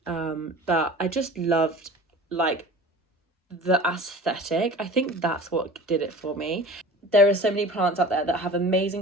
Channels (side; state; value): both; normal; correlation 0.40